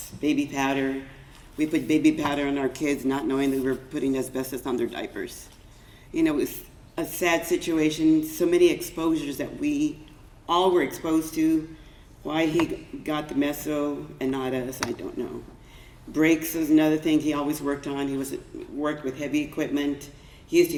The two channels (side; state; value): both; identical; correlation 1.00